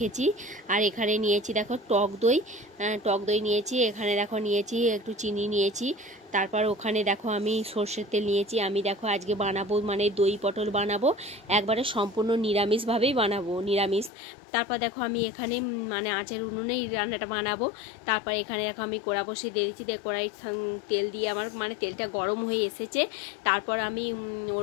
আর এখানে নিয়েছি দেখো টক দই নিয়েছি। এখানে দেখো নিয়েছি একটু চিনি নিয়েছি। তারপর ওখানে দেখো আমি সর্ষের তেল নিয়েছি। আমি দেখো আজকে বানাবো মানে দই পটল বানাবো, একবারে সম্পূর্ণ নিরামিষভাবেই বানাবো, নিরামিষ। তারপর দেখো আমি এখানে মানে আঁচের উনুনেই রান্নাটা বানাবো। তারপর এখানে দেখো আমি কড়া বসিয়ে দিয়েছি, কড়াই তেল দিয়ে আমার মানে তেলটা গরম হয়ে এসেছে। তারপর আমি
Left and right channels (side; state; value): right; drops out; at 14.1 s